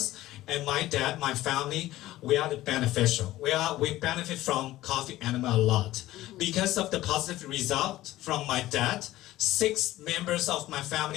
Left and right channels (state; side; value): quieter; right; 15.7 dB